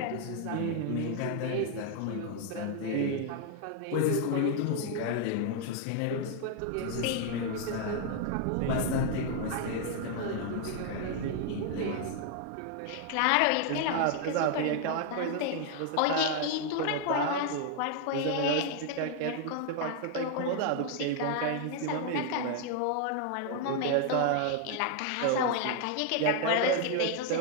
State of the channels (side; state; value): both; different; correlation 0.00